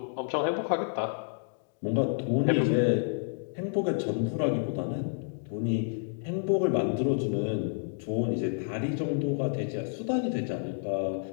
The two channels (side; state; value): right; silent; digital silence